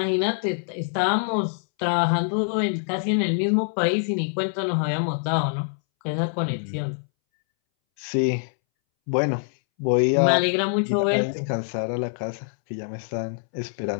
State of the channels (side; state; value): right; silent; 62 dB below the other